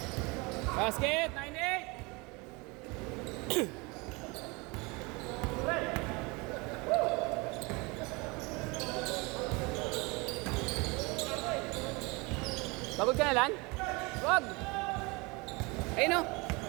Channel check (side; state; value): left; quieter; 26.7 dB